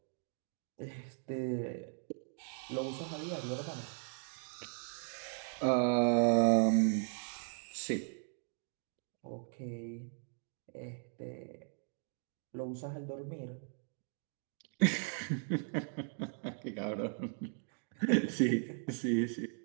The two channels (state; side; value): silent; left; 53 dB below the other